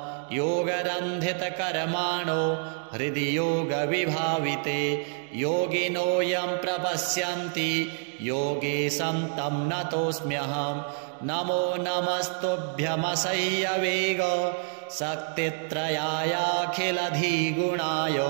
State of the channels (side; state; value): left; silent; 60 dB below the other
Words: योगरन्धितकर्माणो हृदि योगविभाविते योगिनो यं प्रपश्यन्ति योगेशं तं नतोऽस्म्यहम् नमो नमस्तुभ्यमसह्यवेग शक्तित्रयायाखिलधिगुणाय